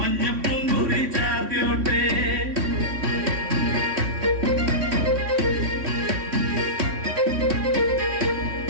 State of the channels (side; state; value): left; late; 3.6 ms